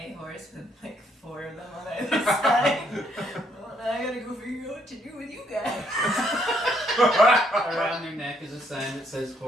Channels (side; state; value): both; normal; correlation 0.71